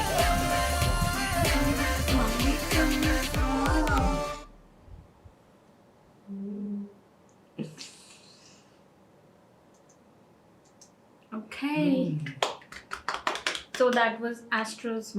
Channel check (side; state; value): both; identical; correlation 1.00